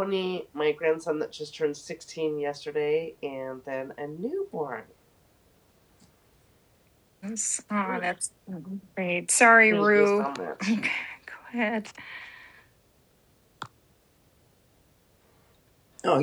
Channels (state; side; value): identical; both; correlation 1.00